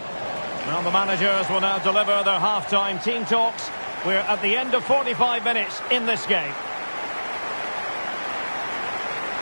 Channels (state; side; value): inverted; both; correlation -1.00